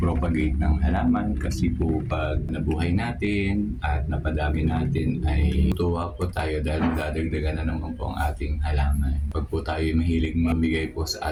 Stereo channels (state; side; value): identical; both; correlation 1.00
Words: ng halaman kasi po pag nabuhay natin at napadami natin ay tuwa po tayo dahil dadagdagan na naman po ang ating halaman. Pag po tayo mahilig mamigay po sa